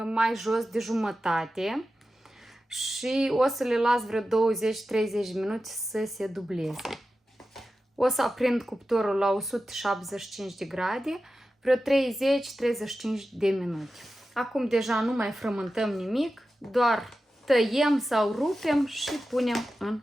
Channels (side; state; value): both; normal; correlation 0.93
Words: mai jos de jumătate și o să le las vreo 20-30 de minute să se dubleze. O să aprind cuptorul la 175 de grade, vreo 30-35 de minute. Acum deja nu mai frământăm nimic, doar tăiem sau rupem și punem în